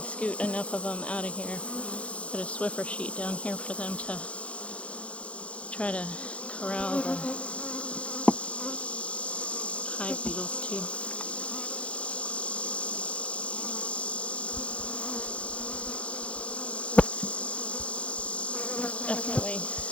enough of them out of here, put a Swiffer sheet down here for them to try to corral the hive beetles too. Definitely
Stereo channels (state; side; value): late; right; 0.062 ms